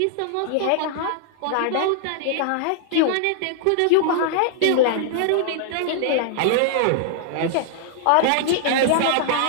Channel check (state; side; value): different; both; correlation -0.01